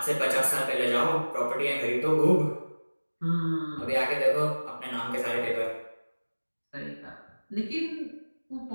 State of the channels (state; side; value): inverted; both; correlation -1.00